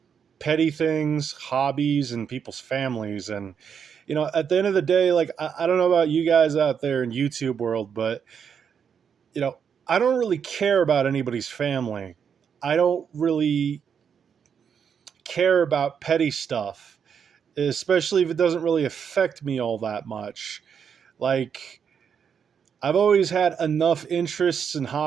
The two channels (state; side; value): quieter; left; 7.3 dB